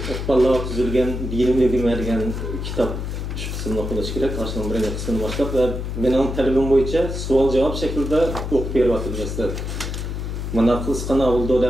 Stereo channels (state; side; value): noise; left; hum, 4 dB below the sound